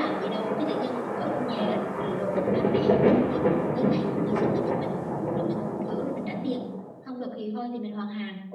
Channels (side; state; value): both; identical; correlation 1.00